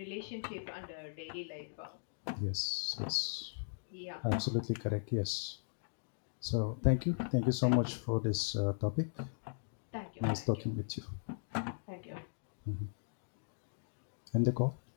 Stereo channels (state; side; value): silent; right; digital silence